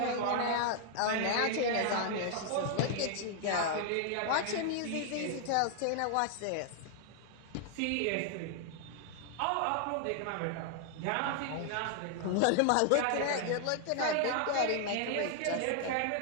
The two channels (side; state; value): both; different; correlation 0.00